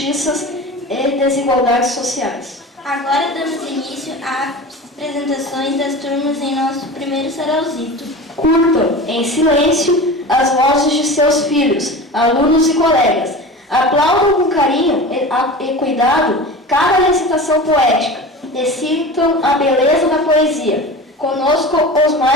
e desigualdades sociais. Agora damos início às apresentações das turmas em nosso primeiro sarauzito. Curtam, em silêncio, as vozes de seus filhos, alunos e colegas. Aplaudam com carinho e cuidado cada recitação poética e sintam a beleza da poesia. Conosco, os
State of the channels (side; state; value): both; normal; correlation 0.33